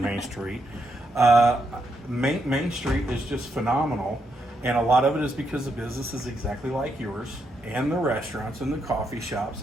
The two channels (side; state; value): both; normal; correlation 0.80